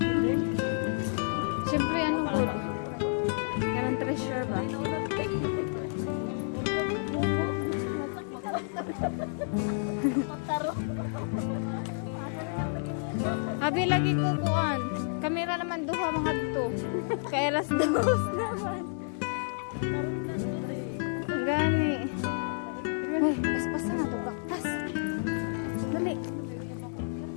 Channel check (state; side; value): silent; right; 58 dB below the other